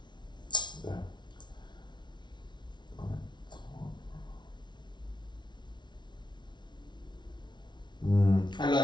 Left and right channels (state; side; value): late; right; 0.22 ms